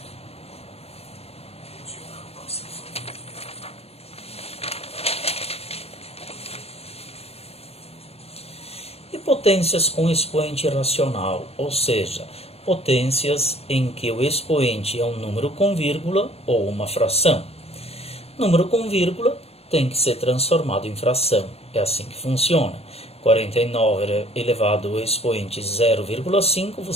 E potências com expoente racional, ou seja, potências em que o expoente é um número com vírgula ou uma fração. Número com vírgula tem que ser transformado em fração. É assim que funciona. 49 elevado ao expoente 0,5,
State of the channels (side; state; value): right; late; 0.29 ms